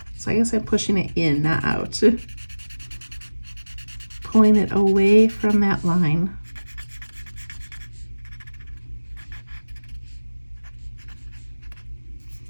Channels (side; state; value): both; inverted; correlation -1.00